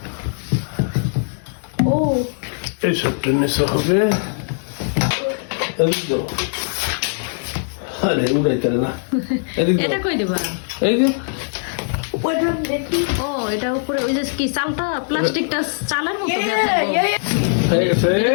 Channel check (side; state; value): right; silent; digital silence